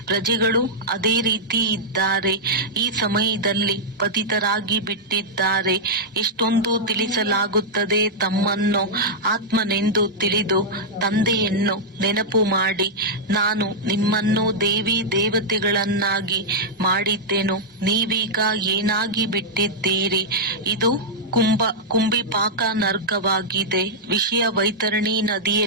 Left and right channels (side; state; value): both; normal; correlation -0.08